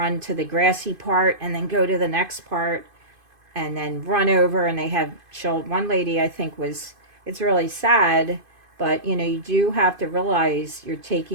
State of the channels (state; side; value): late; left; 2.5 ms